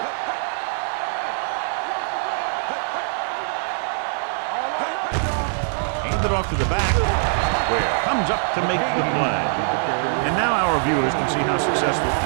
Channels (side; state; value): left; silent; digital silence